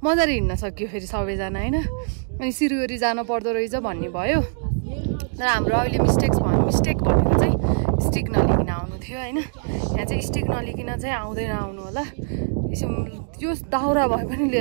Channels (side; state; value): left; silent; digital silence